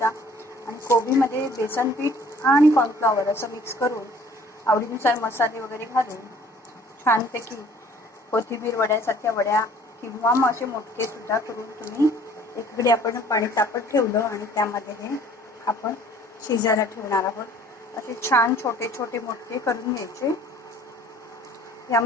आणि कोबीमध्ये बेसन पीठ आणि कॉर्नफ्लॉवर असं मिक्स करून आवडीनुसार मसाले वगैरे घालून छानपैकी कोथिंबीर वड्यासारख्या वड्या किंवा मग असे मोठे सुद्धा करून तुम्ही एकीकडे आपण पाणी तापत ठेवलं आणि त्यामध्ये हे आपण शिजायला ठेवणार आहोत. असे छान छोटे छोटे मोठे करून घ्यायचे.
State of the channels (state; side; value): normal; both; correlation 0.54